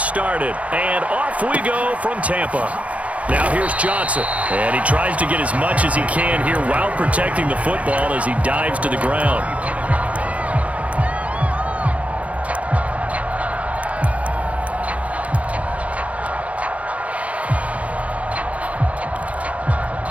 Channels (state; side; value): late; left; 0.066 ms